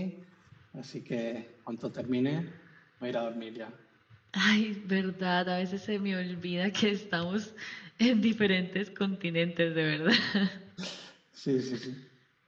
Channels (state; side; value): identical; both; correlation 1.00